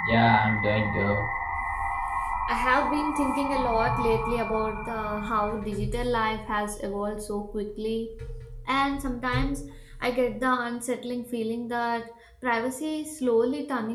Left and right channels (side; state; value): both; identical; correlation 1.00